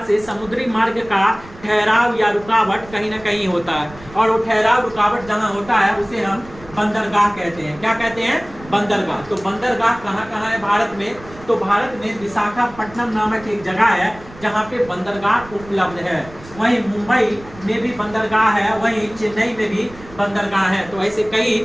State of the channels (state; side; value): noise; right; rumble, 19 dB below the sound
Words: से समुद्री मार्ग का ठहराव या रुकावट कहीं ना कहीं होता है। और वो ठहराव रुकावट जहां होता है उसे हम बंदरगाह कहते हैं। क्या कहते हैं, बंदरगाह। तो बंदरगाह कहाँ कहाँ है भारत में, तो भारत में विशाखापट्टनम नामक एक जगह है जहाँ पे बंदरगाह उपलब्ध है। वहीं मुंबई में भी बंदरगाह है, वहीं चेन्नई में भी बंदरगाह है। तो ऐसे कई,